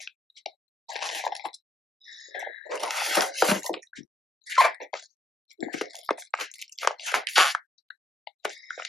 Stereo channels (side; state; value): both; normal; correlation 0.75